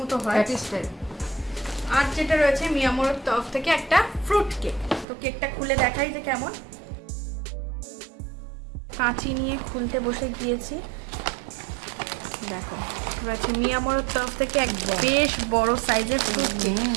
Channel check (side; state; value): left; drops out; at 5.1 s